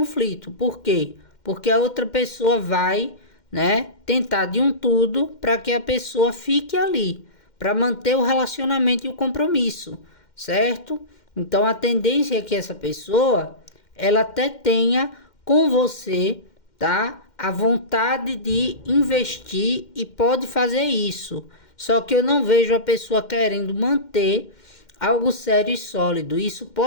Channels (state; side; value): late; right; 2.1 ms